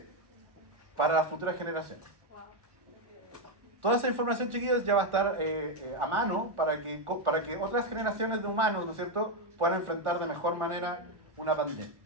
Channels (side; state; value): left; late; 1.4 ms